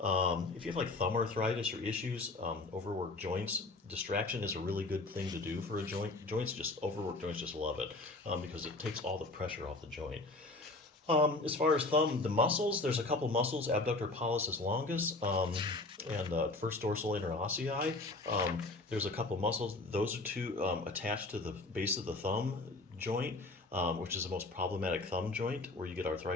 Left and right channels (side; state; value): right; quieter; 3.1 dB